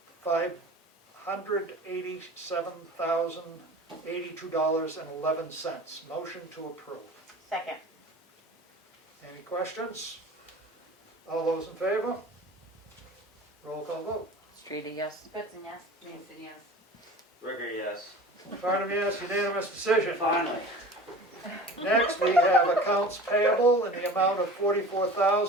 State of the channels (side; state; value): both; normal; correlation 0.39